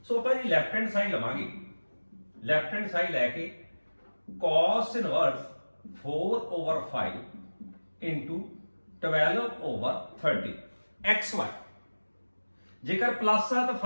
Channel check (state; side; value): inverted; both; correlation -1.00